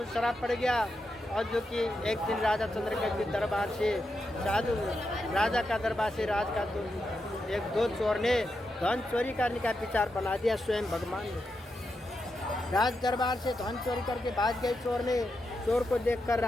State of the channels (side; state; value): both; normal; correlation 0.86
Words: श्राप पड़ गया, और जो कि एक दिन राजा चंद्रकेतु के दरबार से साधु राजा का दरबार से राज का दो चोर ने धन चोरी करने का विचार बना दिया स्वयं भगवान ने। राज दरबार से धन चोरी करके भाग गए चोर ने। चोर को देखकर